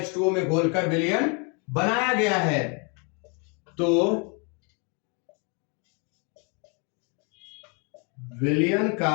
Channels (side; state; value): right; quieter; 34.7 dB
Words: में घोलकर विलयन बनाया गया है। तो विलयन